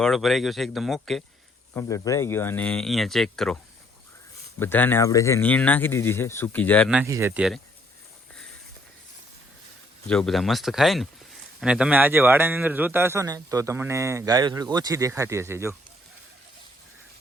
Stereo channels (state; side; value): normal; both; correlation 0.66